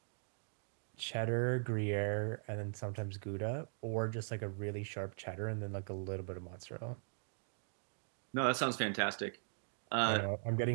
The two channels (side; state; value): left; silent; digital silence